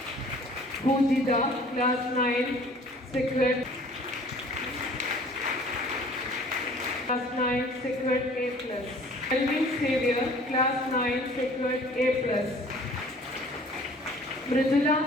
Pujita, Class 9, secured. Class 9, secured A+. Elvin Xavier, Class 9, secured A+. Mridula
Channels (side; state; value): both; normal; correlation 0.51